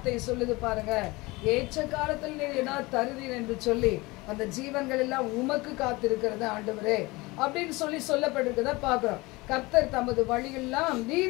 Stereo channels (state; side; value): quieter; right; 22.8 dB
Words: சொல்லுது பாருங்க, ஏற்ற காலத்தில் நீ என்ன தருவீர் என்று சொல்லி அந்த ஜீவன்கள் எல்லாம் உமக்கு காத்திருக்கிறது ஆண்டவரே அப்படின்னு சொல்லப்பட்டிருக்கிறத பாக்குறோம். கர்த்தர் தமது வழியெல்லாம்